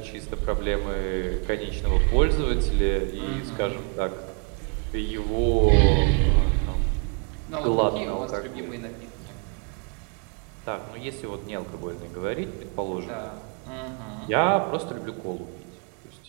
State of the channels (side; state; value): left; quieter; 39.6 dB